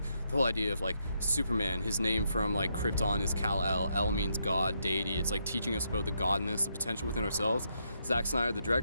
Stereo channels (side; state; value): both; inverted; correlation -0.78